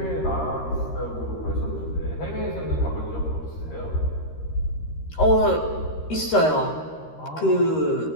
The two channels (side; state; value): right; late; 13 ms